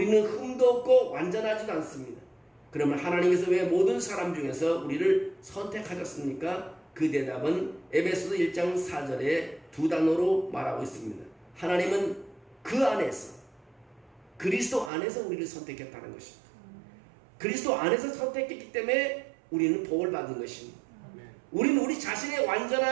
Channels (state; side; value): drops out; left; at 14.9 s